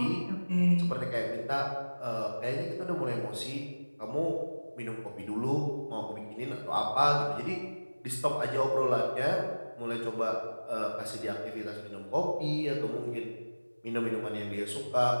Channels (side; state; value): both; inverted; correlation -1.00